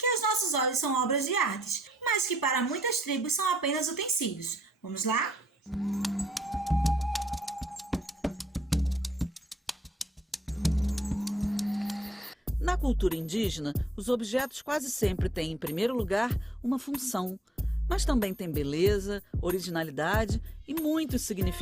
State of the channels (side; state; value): both; normal; correlation 0.72